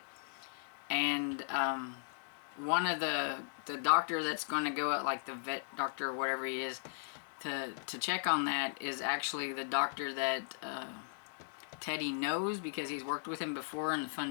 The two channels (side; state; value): right; silent; digital silence